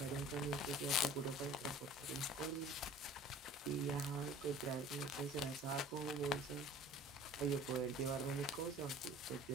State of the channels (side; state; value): both; normal; correlation 0.46